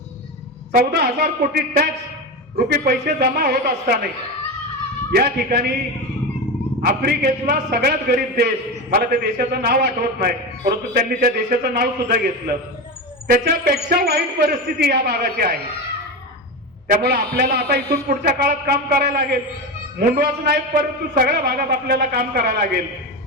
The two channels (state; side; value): normal; both; correlation 0.20